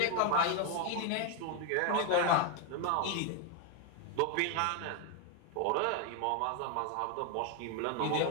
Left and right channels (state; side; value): different; both; correlation 0.01